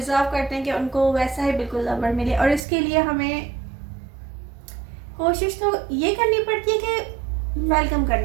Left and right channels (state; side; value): drops out; left; at 2.6 s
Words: करते हैं कि उनको वैसा ही बिल्कुल लवर मिले। और इसके लिए हमें कोशिश तो ये करनी पड़ती है कि वेलकम